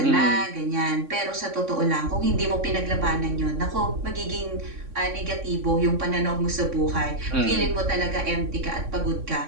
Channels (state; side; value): late; left; 3.6 ms